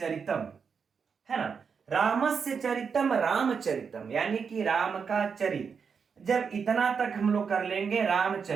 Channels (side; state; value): left; quieter; 6.1 dB